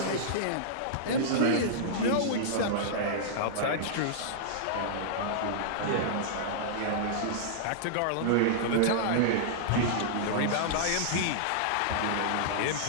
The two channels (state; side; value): different; both; correlation -0.02